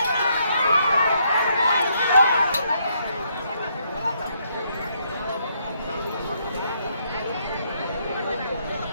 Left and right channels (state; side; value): inverted; both; correlation -0.73